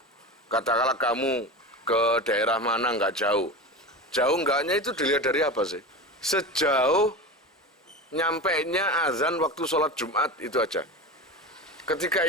Katakanlah kamu ke daerah mana nggak jauh. Jauh enggaknya itu dilihat dari apa sih? Sejauh nyampainya azan waktu sholat Jumat itu aja. Ketika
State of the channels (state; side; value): normal; both; correlation 0.27